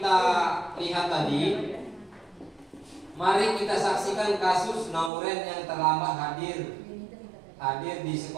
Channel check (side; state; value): left; drops out; at 5.1 s